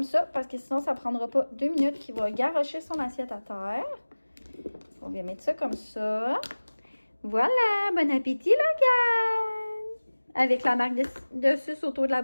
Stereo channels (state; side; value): inverted; both; correlation -1.00